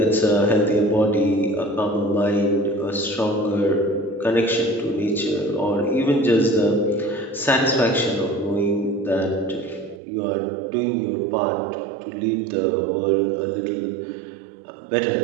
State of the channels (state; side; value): drops out; left; at 10.0 s